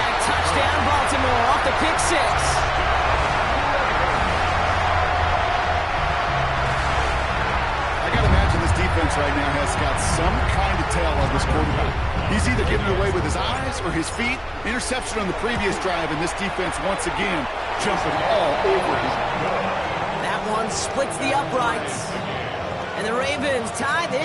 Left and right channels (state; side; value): identical; both; correlation 1.00